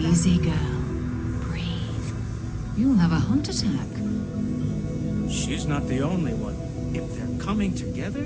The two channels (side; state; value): both; identical; correlation 1.00